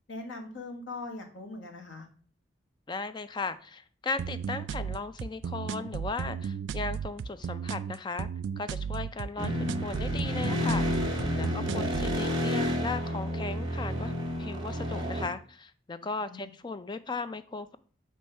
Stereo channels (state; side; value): normal; both; correlation 0.47